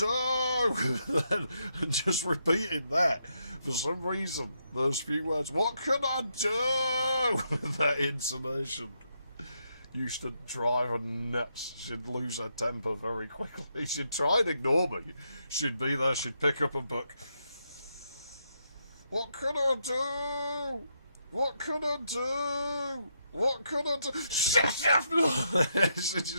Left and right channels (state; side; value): inverted; both; correlation -0.79